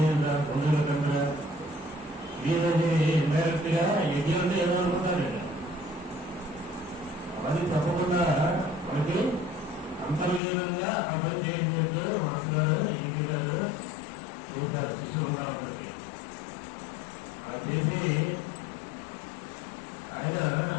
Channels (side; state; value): right; drops out; at 10.4 s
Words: బంధువుల కంటే ఏదైతే ఇండైరెక్ట్ గా యజ్ఞం అంటే ఏదో అనుకుంటారండి. అది తప్పకుండా మనకి అంతర్లీనంగా ఆ పని చేసినట్టు మాస్టర్ ఈజీ గారు చేశారు శిష్యులుగా అందరికి. అలా చేసి ఆయన